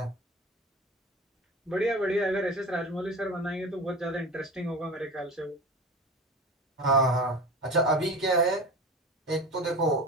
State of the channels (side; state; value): both; normal; correlation 0.31